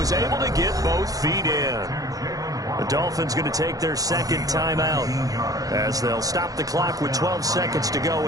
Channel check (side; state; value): left; late; 0.17 ms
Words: able to get both feet in. The Dolphins going to take their 2nd timeout as they'll stop the clock with 12 seconds to go